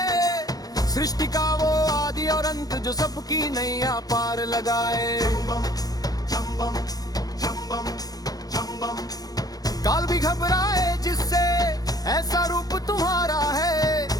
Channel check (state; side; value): late; right; 0.18 ms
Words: सृष्टि का वो आदि और अंत जो सबकी नैया पार लगाए। काल भी घबराए जिससे ऐसा रूप तुम्हारा है।